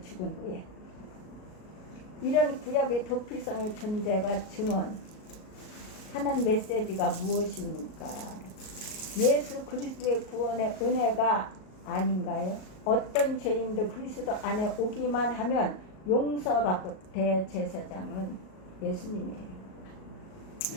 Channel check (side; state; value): right; late; 38 ms